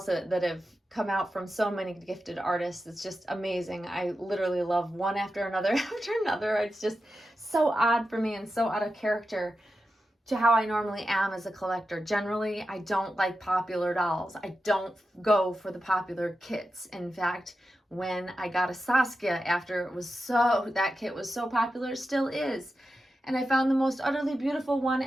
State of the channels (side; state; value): both; normal; correlation 0.91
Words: that have come out from so many gifted artists, it's just amazing. I literally love one after another after another. It's just so odd for me and so out of character to how I normally am as a collector. Generally, I don't like popular dolls. I don't go for the popular kits. In fact, when I got a Saskia after that kit was so popular, still is, and I found the most utterly beautiful one,